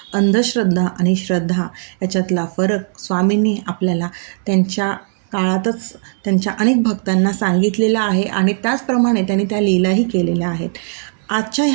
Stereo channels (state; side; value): silent; left; digital silence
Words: अंधश्रद्धा आणि श्रद्धा याच्यातला फरक स्वामींनी आपल्याला त्यांच्या काळातच त्यांच्या अनेक भक्तांना सांगितलेला आहे आणि त्याचप्रमाणे त्यांनी त्या लीलाही केलेल्या आहेत. आजच्या